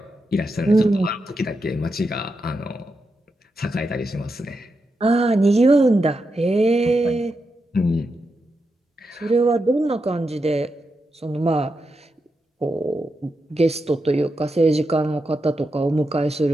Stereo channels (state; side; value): normal; both; correlation 0.86